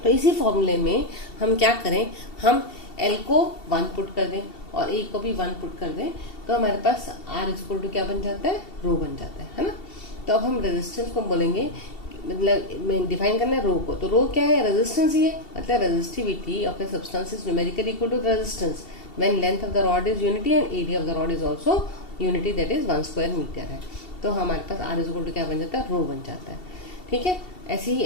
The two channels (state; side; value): late; right; 2.7 ms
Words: तो इसी फॉर्मूले में हम क्या करें, हम L को 1 पुट कर दें और A को भी 1 पुट कर दें, तो हमारे पास R इज इक्वल टू क्या बन जाता है, रो बन जाता है ना। तो अब हम रेजिस्टेंस को बोलेंगे, मतलब डिफाइन करना है रो को, तो रो क्या है, रेजिस्टेंस ही है। मतलब resistivity of a substance is numerically equal to resistance when length of the rod is unity and area of the rod is also unity, that is 1 square metre है। तो हमारे पास R इज इक्वल टू क्या बन जाता है, रो बन जाता है। ठीक है। ऐसे ही